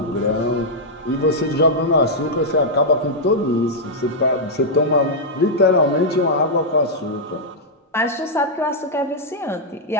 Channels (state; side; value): normal; both; correlation -0.07